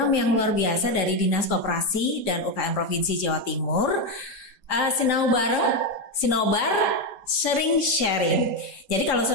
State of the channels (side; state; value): right; late; 3.7 ms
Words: yang luar biasa dari Dinas Koperasi dan UKM Provinsi Jawa Timur. Sinau bareng, Sinobar, sering sharing. Jadi kalau